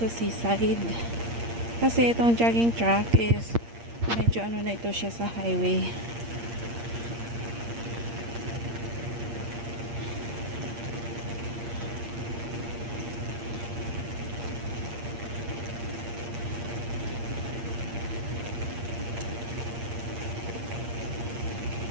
seaside. Kasi itong jogging track is medyo ano na ito siya sa highway.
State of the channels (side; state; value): left; late; 8.6 ms